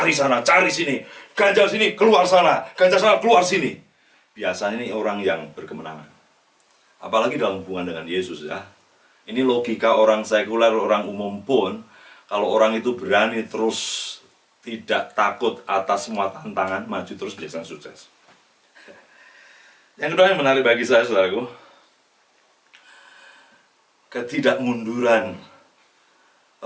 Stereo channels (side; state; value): both; identical; correlation 1.00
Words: sana, cari sini, ganjal sini, keluar sana, ganjal sana, keluar sini. Biasanya ini orang yang berkemenangan. Apalagi dalam hubungan dengan Yesus ya. Ini logika orang sekuler, orang umum pun, kalau orang itu berani terus tidak takut atas semua tantangan, maju terus biasanya sukses. Yang kedua yang menarik bagi saya, saudaraku, ketidakmunduran